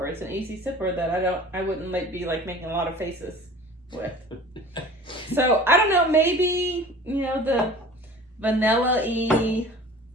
It's an easy sipper that I wouldn't be making a lot of faces with. So I don't know. Maybe the vanilla-y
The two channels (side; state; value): both; normal; correlation 0.43